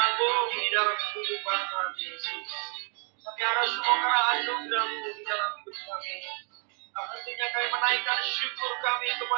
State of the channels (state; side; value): quieter; left; 38.4 dB